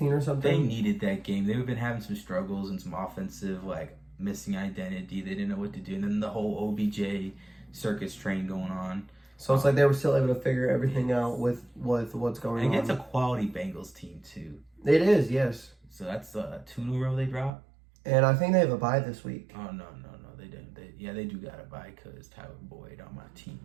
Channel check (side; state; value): left; drops out; at 17.5 s